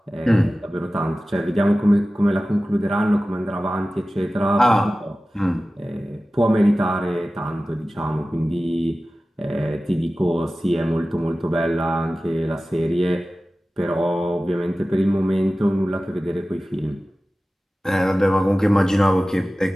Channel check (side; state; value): both; normal; correlation 0.96